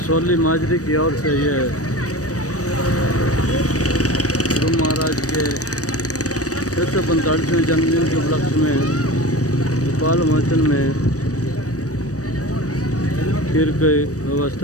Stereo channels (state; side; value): late; right; 0.66 ms